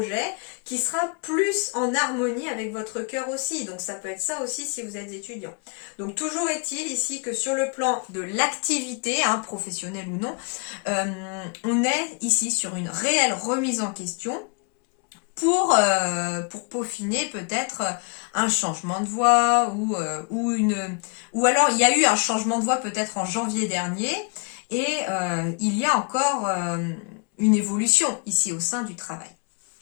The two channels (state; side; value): quieter; right; 37.3 dB